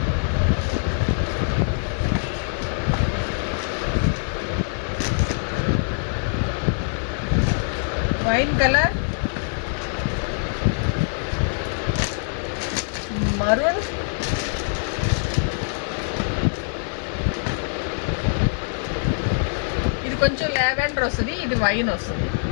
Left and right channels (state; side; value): silent; right; digital silence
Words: wine colour, maroon, ఇది కొంచెం లావెండర్ వస్తుంది, ఇది వైన్ వస్తుంది.